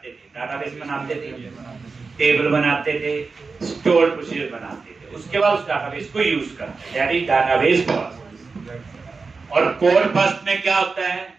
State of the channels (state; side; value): quieter; left; 4.4 dB